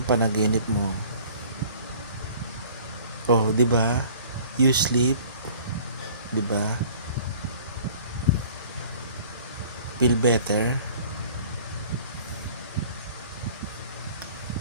panaginip mo? Oh, 'di ba? You sleep, 'di ba? Feel better.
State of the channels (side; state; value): both; inverted; correlation -0.49